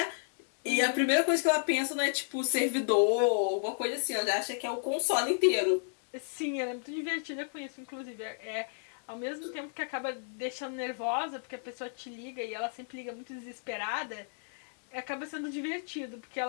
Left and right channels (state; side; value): silent; right; 56 dB below the other